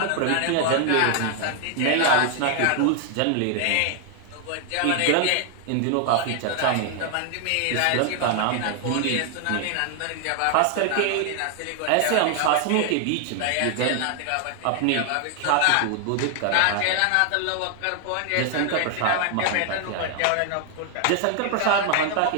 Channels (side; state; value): both; different; correlation 0.00